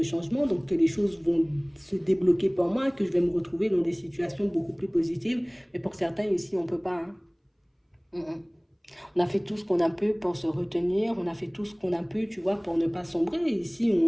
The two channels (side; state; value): both; identical; correlation 1.00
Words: changement, donc que les choses vont se débloquer pour moi, que je vais me retrouver dans des situations beaucoup plus positives. Mais pour certains, ici, on ne peut pas. Hein. Mm, mm. On a fait tout ce qu'on a pu pour se retenir, on a fait tout ce qu'on a pu, tu vois, pour ne pas sombrer. Ici,